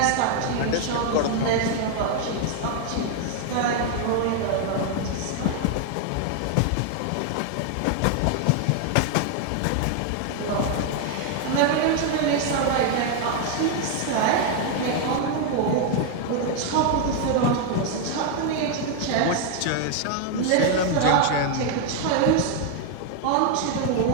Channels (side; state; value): both; different; correlation 0.00